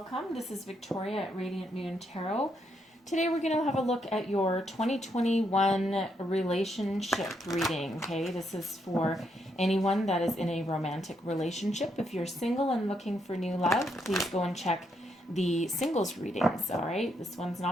This is Victoria at Radiant Moon Tarot. Today we're going to have a look at your 2021 relationship reading. Okay, this is for anyone that is in a romantic relationship. If you're single and looking for new love, please go and check the singles readings. All right, this one's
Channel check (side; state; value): both; normal; correlation 0.77